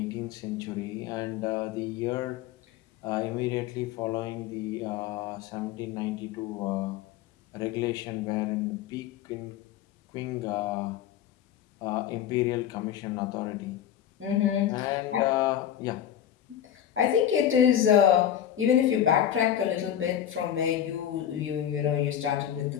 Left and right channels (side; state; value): right; quieter; 10.3 dB